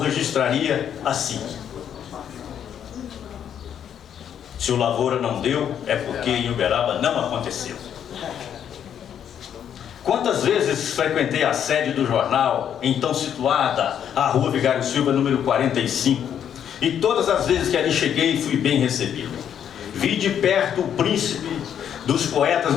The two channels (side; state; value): right; quieter; 9.1 dB